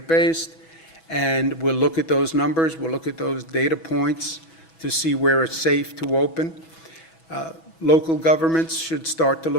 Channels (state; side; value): late; right; 6.1 ms